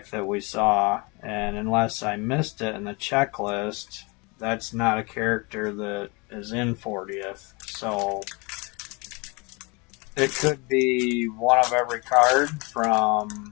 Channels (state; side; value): quieter; right; 28.5 dB